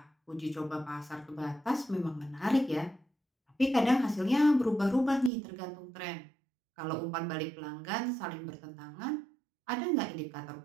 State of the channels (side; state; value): left; drops out; at 5.3 s